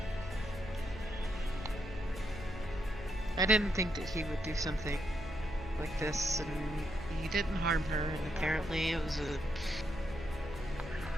I didn't think that he would do something like this, and he didn't harm her, and apparently it was a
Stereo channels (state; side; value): noise; left; hum, 12 dB below the sound